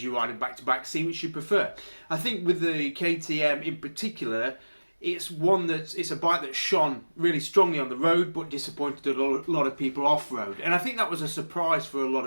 you ride them back to back, see which you prefer. I think with the KTM in particular, it's a bike that shone really strongly on the road, but disappointed a lot of people off-road. And I think that was a surprise for a lot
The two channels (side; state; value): both; inverted; correlation -1.00